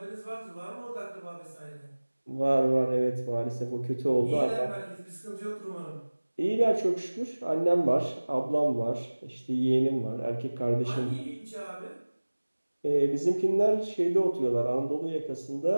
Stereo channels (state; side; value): inverted; both; correlation -1.00